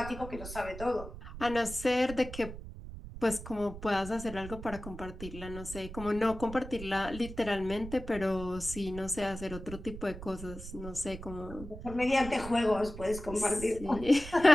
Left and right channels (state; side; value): noise; right; rumble, 11 dB below the sound